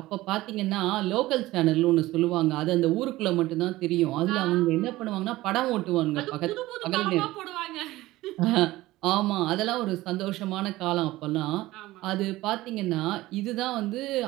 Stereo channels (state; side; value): quieter; left; 17.6 dB